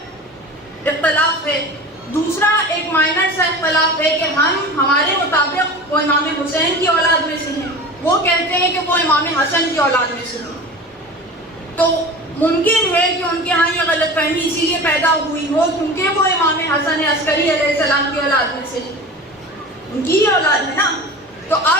اختلاف ہے. دوسرا ایک مائنر سا اختلاف ہے کہ ہمارے مطابق وہ امام حسین کی اولاد میں سے ہیں، وہ کہتے ہیں کہ وہ امام حسن کی اولاد میں سے ہیں. تو ممکن ہے کہ ان کے ہاں یہ غلط فہمی اسی لیے پیدا ہوئی ہو کیونکہ وہ امام حسن عسکری علیہ السلام کی اولاد میں سے ہیں، ان کی ہی اولاد ہے نا. تو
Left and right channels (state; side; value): normal; both; correlation 0.34